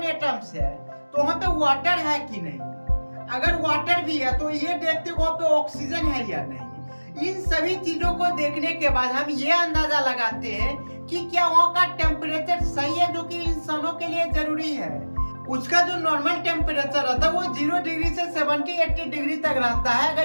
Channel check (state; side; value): inverted; both; correlation -1.00